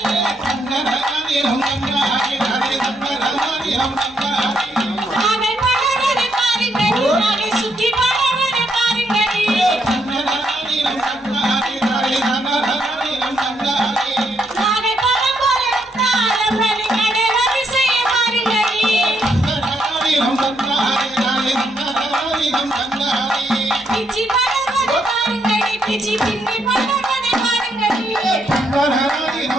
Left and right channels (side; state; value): both; normal; correlation 0.75